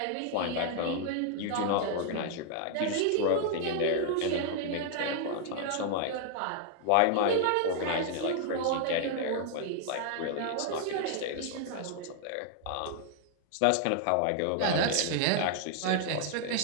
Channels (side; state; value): both; different; correlation 0.00